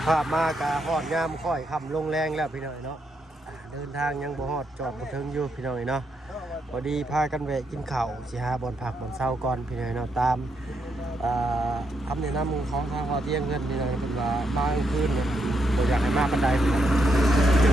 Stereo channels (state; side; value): normal; both; correlation 0.79